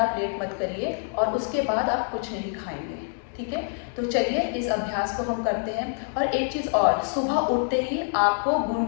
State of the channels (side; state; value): right; silent; 61 dB below the other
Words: आप लेट मत करिए। और उसके बाद आप कुछ नहीं खाएंगे, ठीक है। तो चलिए इस अभ्यास को हम करते हैं। और एक चीज़ और, सुबह उठते ही आपको